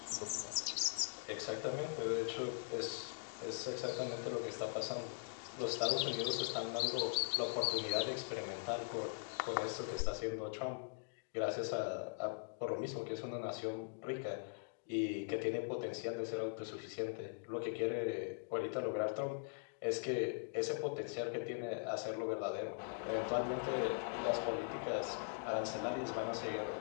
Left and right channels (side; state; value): right; silent; digital silence